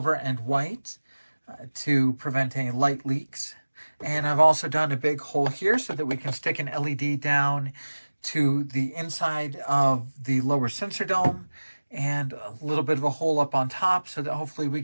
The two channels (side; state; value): both; inverted; correlation -1.00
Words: and white to prevent any light leaks. And I've also done a big hole here so that we can stick an LED down to the inside of the lower sensor dome, and a little bit of a hole up on top so that hopefully we